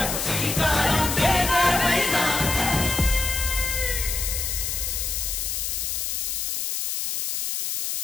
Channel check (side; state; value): left; noise; hiss, 2 dB below the sound